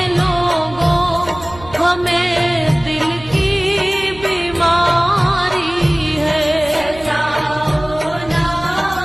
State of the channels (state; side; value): noise; right; hum, 18 dB below the sound